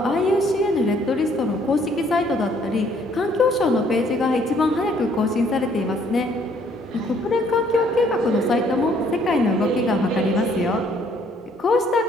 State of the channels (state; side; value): normal; both; correlation 0.63